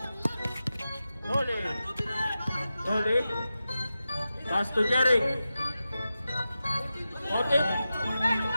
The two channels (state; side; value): inverted; both; correlation -0.92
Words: Noli. Noli. Pass to Jeric. Morten.